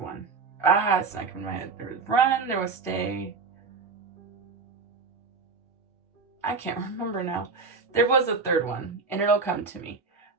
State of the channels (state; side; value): quieter; left; 4.6 dB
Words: It's not coming to my head. There was run, there was stay. I can't remember now. There was a third one, and it'll come to me.